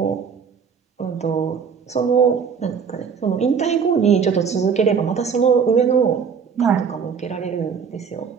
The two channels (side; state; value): left; quieter; 6.4 dB